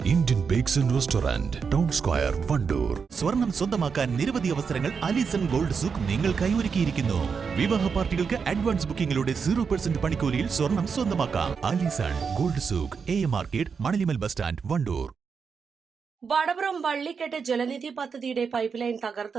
Indian bakes and restaurant, town square, Wandoor. സ്വർണം സ്വന്തമാക്കാൻ നിരവധി അവസരങ്ങൾ അലിസൺ ഗോൾഡ് സൂക്ക് നിങ്ങൾക്കായി ഒരുക്കിയിരിക്കുന്നു. വിവാഹ പാർട്ടികൾക്ക് അഡ്വാൻസ് ബുക്കിംഗിലൂടെ 0% പണിക്കൂലിയിൽ സ്വർണം സ്വന്തമാക്കാം. Alison gold souk, AM market, മണലിമൽ ബസ് സ്റ്റാൻഡ്, വണ്ടൂർ. വടപുറം വള്ളിക്കെട്ട് ജലനിധി പദ്ധതിയുടെ പൈപ്പ് ലൈൻ തകർത്ത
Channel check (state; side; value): quieter; left; 5.9 dB